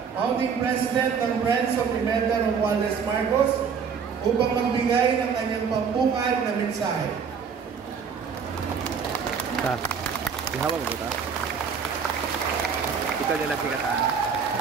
Founding President ng Friends of Pimenta Romualdez Marcos, upang magbigay ng kanyang pambungad na mensahe. Ihawag mo ba? Ikaw nila sikatan.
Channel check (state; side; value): quieter; left; 6.4 dB